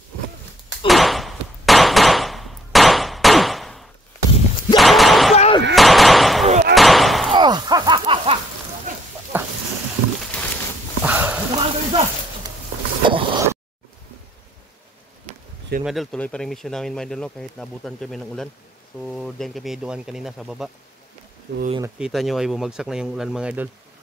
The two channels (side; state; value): both; normal; correlation 0.67